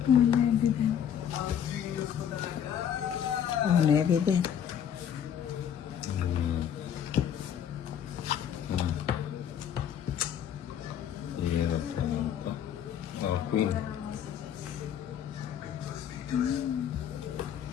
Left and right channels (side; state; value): right; quieter; 9.1 dB